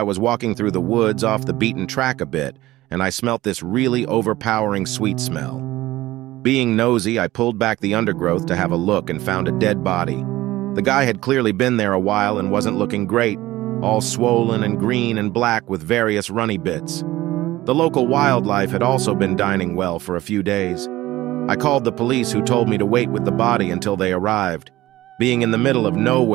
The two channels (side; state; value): left; quieter; 17.0 dB